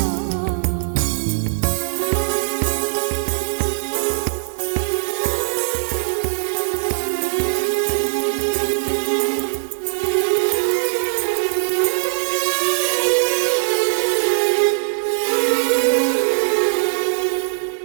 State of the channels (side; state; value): left; silent; 66 dB below the other